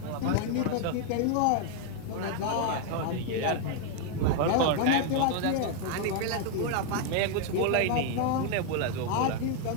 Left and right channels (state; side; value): different; both; correlation 0.00